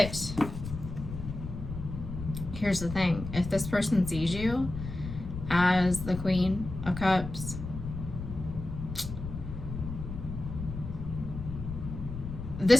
here's the thing. If this person sees you as the Queen of Cups,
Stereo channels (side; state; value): left; noise; rumble, 8 dB below the sound